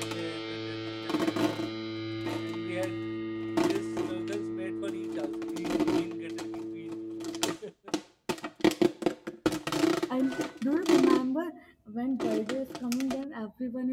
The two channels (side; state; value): both; identical; correlation 1.00